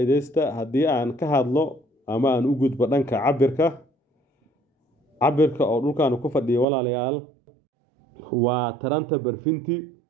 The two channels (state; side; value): drops out; left; at 6.7 s